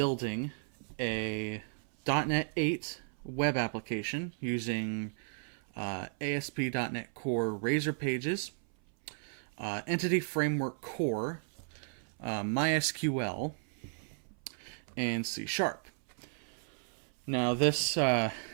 a .NET 8 web application using ASP.NET Core Razor Pages, Entity Framework Core, MySQL, and C#. Now this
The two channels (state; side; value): silent; left; 55 dB below the other